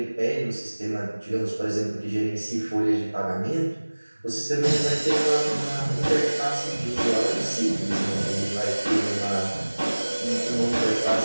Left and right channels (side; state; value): both; inverted; correlation -1.00